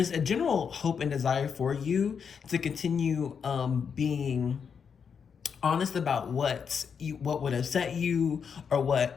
a general hope and desire for you to continue being honest about what would upset you, or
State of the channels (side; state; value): right; quieter; 6.6 dB